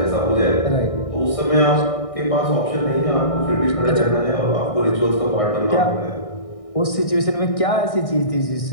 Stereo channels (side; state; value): right; late; 1.6 ms